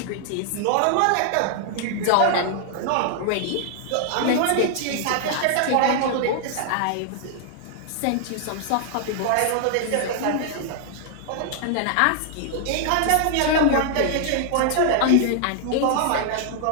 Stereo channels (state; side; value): different; both; correlation 0.00